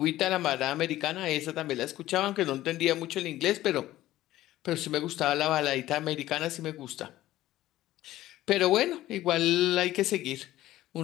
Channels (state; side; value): quieter; right; 15.0 dB